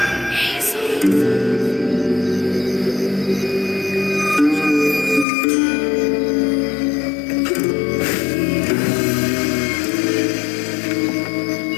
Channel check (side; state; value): right; drops out; at 5.2 s